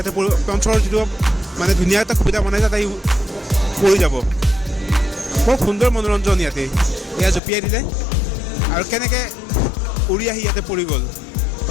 পঞ্চৰ যিটো মানে ধুনীয়া এটা সুবিধা বনাইছে তাই পৰি যাব। বৰ সুন্দৰ মনোৰঞ্জন ইয়াতে। এয়া জঁপিয়াই দিলে আৰু কেনেকৈ উৰি আহি ইয়াতে পৰি গ'ল।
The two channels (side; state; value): right; drops out; at 7.4 s